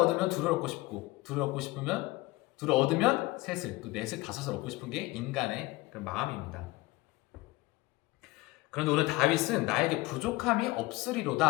둘을 얻고 싶고, 둘을 얻고 싶으면 둘을 얻으면 셋을, 또 넷을, 다섯을 얻고 싶은 게 인간의 그런 마음입니다. 그런데 오늘 다윗은 나에게 부족함이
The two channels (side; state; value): right; quieter; 20.5 dB